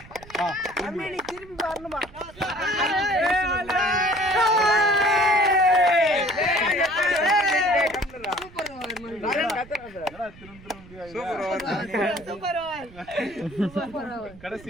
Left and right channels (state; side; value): noise; right; rumble, 21 dB below the sound